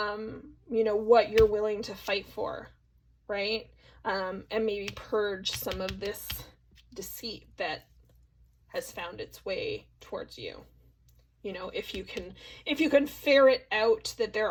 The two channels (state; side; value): identical; both; correlation 1.00